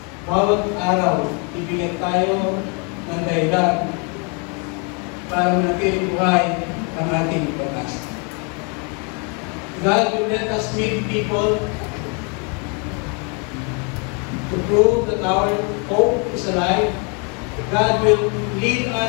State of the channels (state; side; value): quieter; right; 35.3 dB